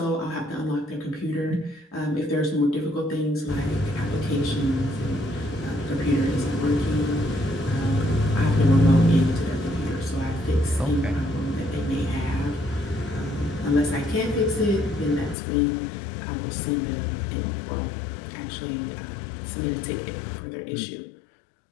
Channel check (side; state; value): right; drops out; at 15.4 s